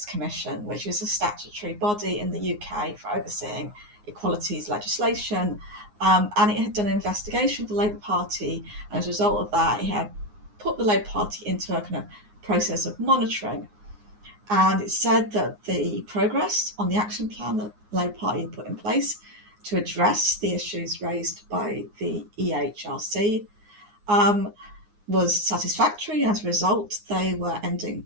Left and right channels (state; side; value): late; left; 9.6 ms